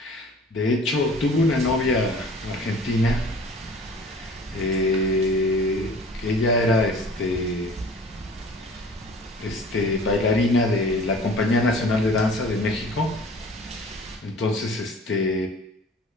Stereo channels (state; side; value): normal; both; correlation 0.46